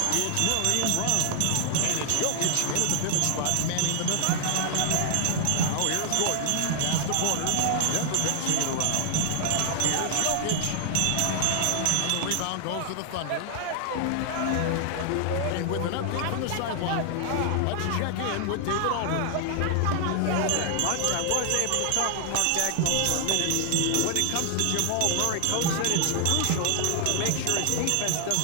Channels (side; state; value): both; different; correlation 0.00